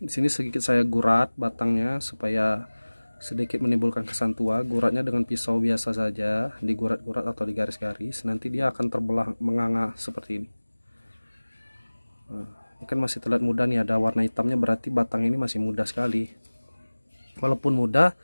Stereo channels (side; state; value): both; inverted; correlation -1.00